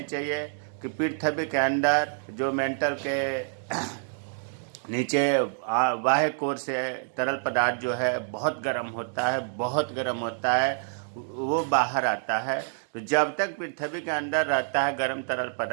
चाहिए कि पृथ्वी के अंदर जो मेंटल के नीचे बाह्य कोर से तरल पदार्थ जो है बहुत गर्म होता है, बहुत गर्म होता है, वो बाहर आता है। तो जब तक पृथ्वी के अंदर रहता है गर्म तरल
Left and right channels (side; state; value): left; silent; digital silence